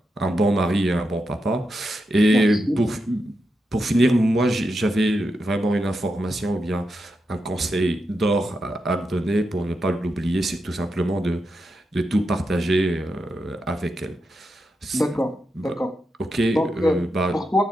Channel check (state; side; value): normal; both; correlation 0.86